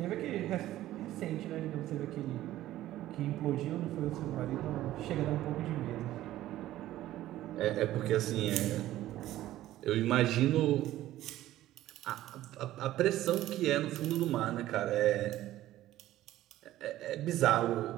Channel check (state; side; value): quieter; left; 14.5 dB